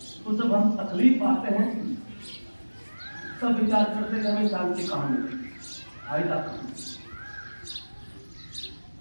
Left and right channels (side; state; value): both; inverted; correlation -1.00